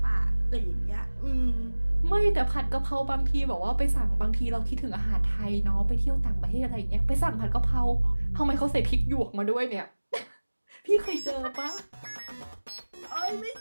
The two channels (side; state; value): both; inverted; correlation -1.00